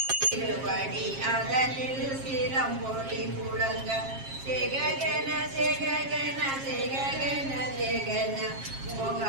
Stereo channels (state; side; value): late; left; 7.4 ms